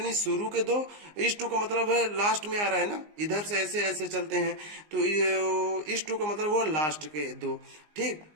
शुरू के 2। इस 2 का मतलब है लास्ट में आ रहा है ना, इधर से ऐसे ऐसे चलते हैं। तो इस 2 का मतलब वो लास्ट के 2। ठीक।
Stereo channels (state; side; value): late; left; 19 ms